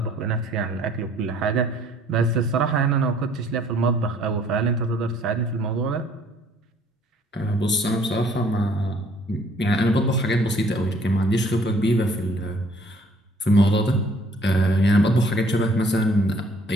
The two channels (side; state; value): both; normal; correlation 0.59